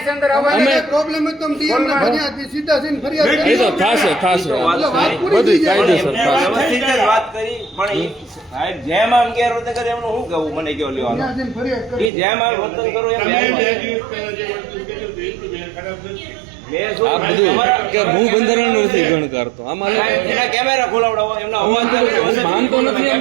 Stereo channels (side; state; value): left; drops out; at 12.1 s